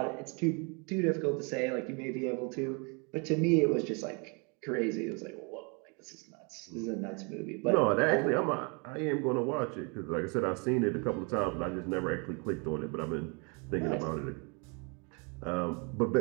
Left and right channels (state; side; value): quieter; left; 33.5 dB